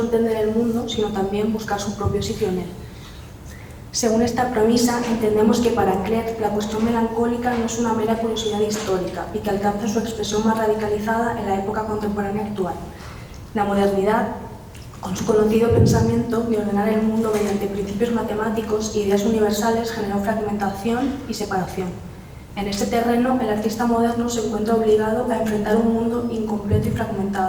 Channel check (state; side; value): identical; both; correlation 1.00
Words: entender el mundo, sino también buscar su propio sitio en él. Según esta premisa, entendemos que para Klerk la cuestión melancólica no es una mera curiosidad histórica y que alcanza su expresión más radicalizada en la época contemporánea actual. La modernidad, con su conocido pensamiento de ordenar el mundo mediante principios matemáticos e ideas universales, generó fragmentación y separación. En este terreno, el artista moderno se encuentra obligado a enfrentar un mundo incompleto y